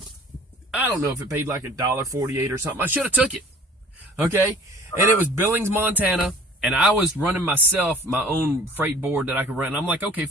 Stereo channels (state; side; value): normal; both; correlation 0.48